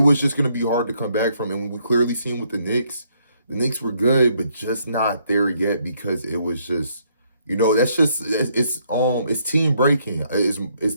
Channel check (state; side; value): inverted; both; correlation -0.71